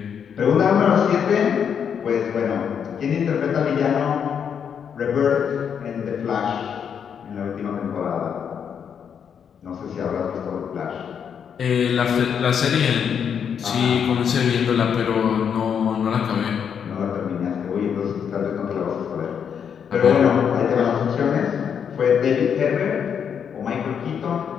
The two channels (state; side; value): quieter; right; 7.6 dB